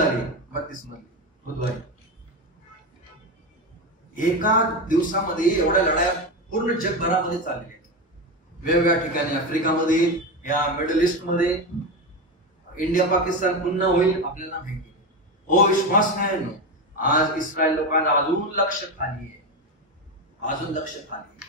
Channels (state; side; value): normal; both; correlation 0.17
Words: 32 मध्ये बुधवारी. एका दिवसामध्ये एवढ्या लढाया पूर्ण जगभरामध्ये चालल्या आहेत, वेगवेगळ्या ठिकाणी. आफ्रिकामध्ये, या मिडल ईस्ट मध्ये, इंडिया पाकिस्तान पुन्हा होईल आपल्याला माहिती. हो विश्वास नाही. आज इस्रायल लोकांना अजून लक्ष खाली आहे, अजून लक्ष